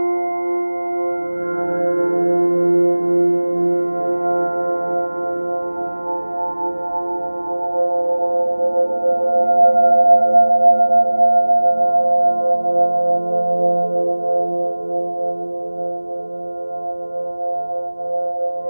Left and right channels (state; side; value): inverted; both; correlation -1.00